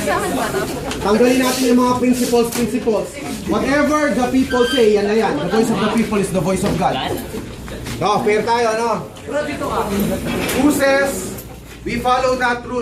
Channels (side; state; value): both; identical; correlation 1.00